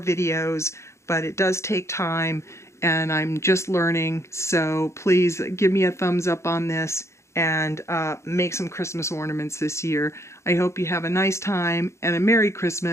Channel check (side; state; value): right; late; 0.14 ms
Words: but it does take time, and I'm just learning. So please give me a thumbs up on this and make some Christmas ornaments this year. I hope you have a nice time and a Merry